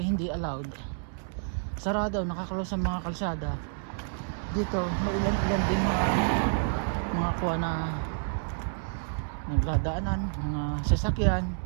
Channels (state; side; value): silent; left; 58 dB below the other